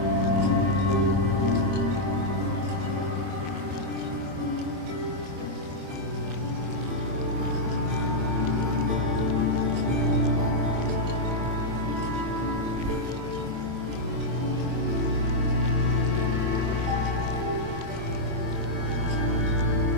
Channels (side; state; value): left; late; 24 ms